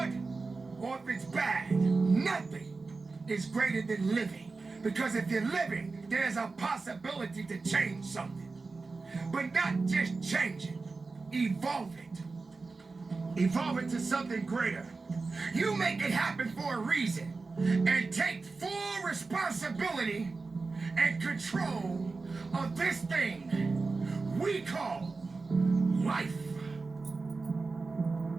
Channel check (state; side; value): quieter; left; 4.0 dB